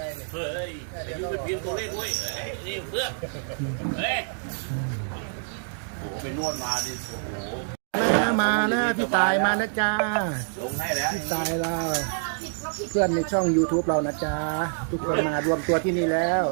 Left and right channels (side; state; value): left; silent; digital silence